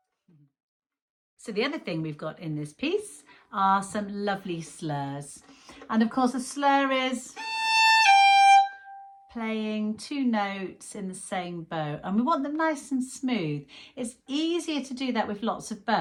So the other thing we've got in this piece are some lovely slurs. And of course a slur is playing two notes in the same bow, and we want them nice and smooth. It's easier to do that with lots of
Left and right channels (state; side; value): identical; both; correlation 1.00